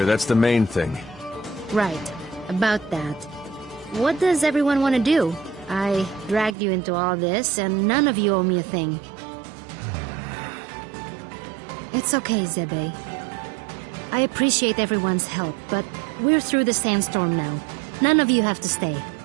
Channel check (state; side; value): drops out; left; at 6.6 s